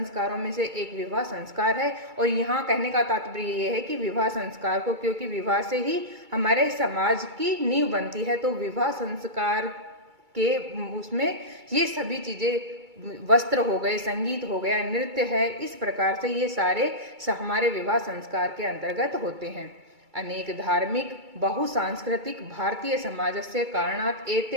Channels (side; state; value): left; late; 2.3 ms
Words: में से एक विवाह संस्कार है। और यहाँ कहने का तात्पर्य ये है कि विवाह संस्कार को, क्योंकि विवाह से ही हमारे समाज की नींव बनती है, तो विवाह संस्कार के उसमें ये सभी चीजें, वस्त्र हो गए, संगीत हो गया, नृत्य है, इस प्रकार से ये सारे हमारे विवाह संस्कार के अंतर्गत होते हैं। अनेक धार्मिक बहुसांस्कृतिक भारतीय समाजस्य कारणात्